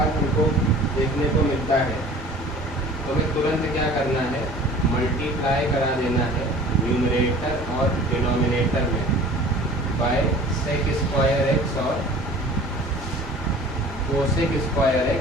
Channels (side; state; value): both; normal; correlation 0.45